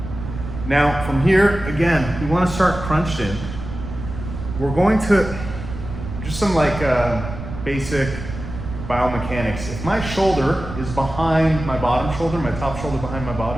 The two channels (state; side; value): noise; right; rumble, 9 dB below the sound